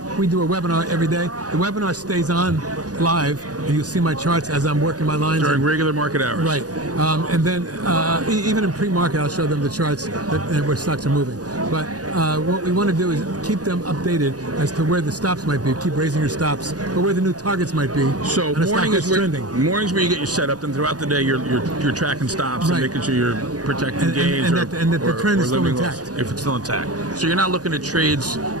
we do a webinar every day, the webinar stays on live, and you'll see my charts as I'm working my lines. During regular market hours. Right. And then even in pre-market, I'll show them the charts where stocks are moving. But what we want to do is keep them updated as to where the stops might be, keep raising your stops, or where the new targets might be. So mornings where you get your setup, and throughout the day you're tracking stops and making sure you're protecting gains and that the trend is still intact. If it's still intact. So you're not looking at trades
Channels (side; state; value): left; late; 0.68 ms